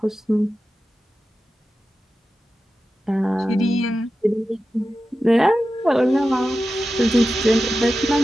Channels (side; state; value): both; normal; correlation 0.92